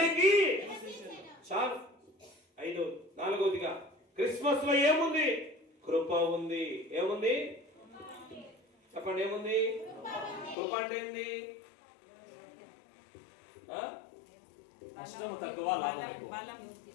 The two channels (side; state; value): right; drops out; at 10.6 s